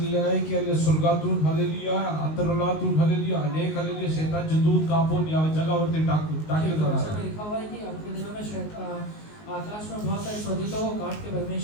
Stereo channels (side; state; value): right; late; 19 ms